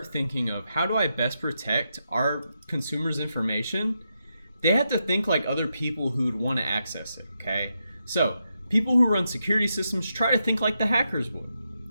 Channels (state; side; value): inverted; both; correlation -0.84